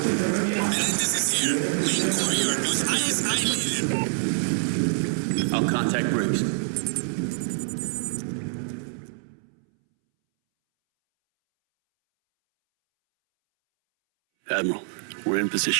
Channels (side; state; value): left; silent; 61 dB below the other